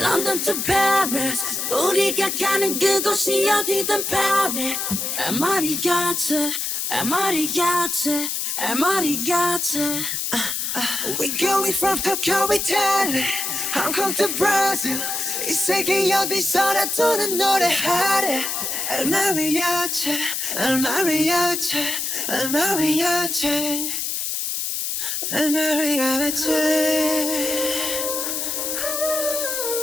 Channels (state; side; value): noise; left; hiss, 2 dB below the sound